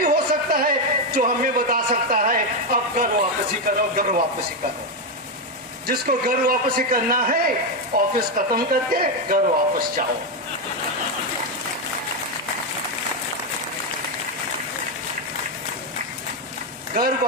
हो सकता है जो हमें बता सकता है अब घर वापसी करो, घर वापसी करो। जिसको घर वापसी करना है ऑफिस खत्म करके घर वापस जाओ। घर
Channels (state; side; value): normal; both; correlation 0.06